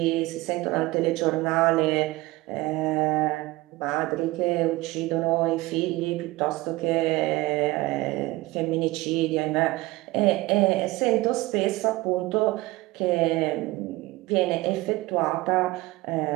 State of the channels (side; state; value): left; quieter; 19.9 dB